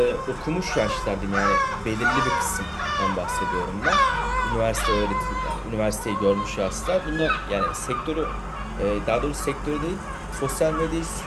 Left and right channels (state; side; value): identical; both; correlation 1.00